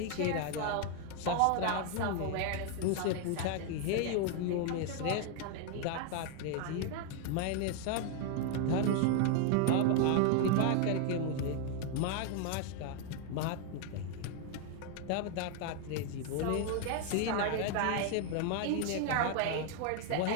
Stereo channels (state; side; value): different; both; correlation 0.01